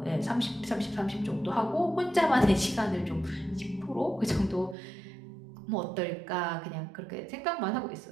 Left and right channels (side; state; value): left; drops out; at 4.8 s